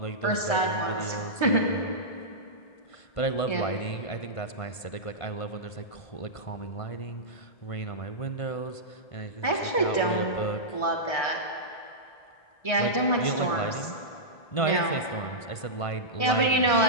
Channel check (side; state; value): right; late; 1.5 ms